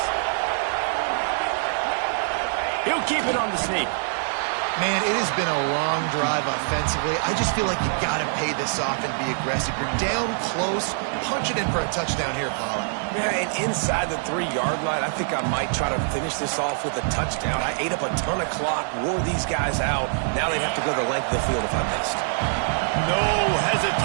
He'll keep it on the sneak. Man, it has been a long drive offensively. I just feel like you got to pay this off and be aggressive. You're down close. Punch it in for a touchdown here, Paula. Yeah, and inside the 3-yard line, I think I might try to finish this off with a touchdown. I ate up a ton of clock, wore these guys out. Now they'd have to go the length of the field if I missed. No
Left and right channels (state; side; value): silent; left; digital silence